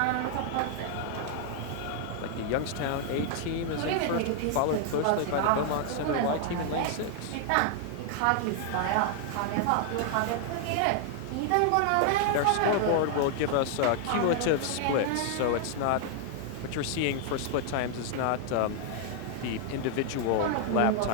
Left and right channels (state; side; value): different; both; correlation 0.00